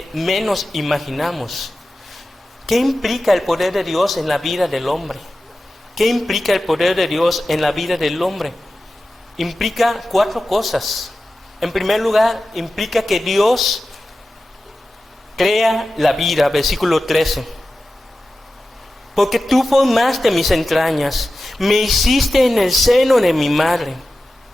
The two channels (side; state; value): both; normal; correlation 0.94